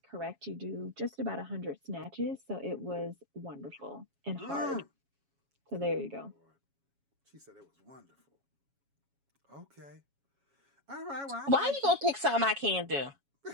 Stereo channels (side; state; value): left; late; 7.2 ms